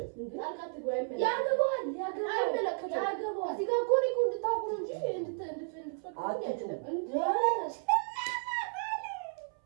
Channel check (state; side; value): silent; left; 56 dB below the other